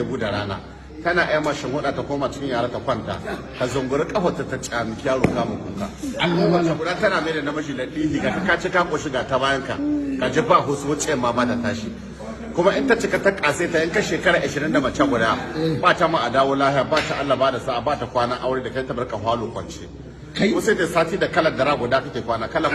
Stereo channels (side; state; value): both; identical; correlation 1.00